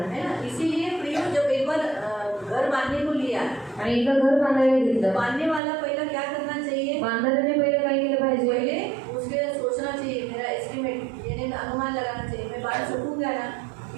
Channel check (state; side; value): drops out; left; at 5.6 s